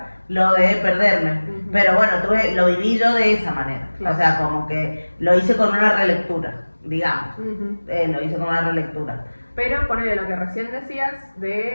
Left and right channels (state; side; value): inverted; both; correlation -1.00